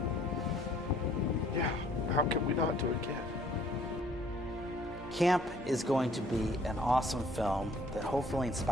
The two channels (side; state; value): both; normal; correlation 0.59